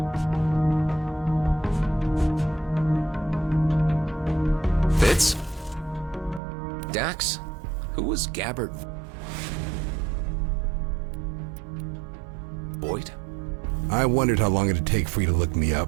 Fitz? Dax? Who was Gabbard? Voigt? I wondered how long it'd take for you to look me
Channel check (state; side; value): drops out; left; at 6.4 s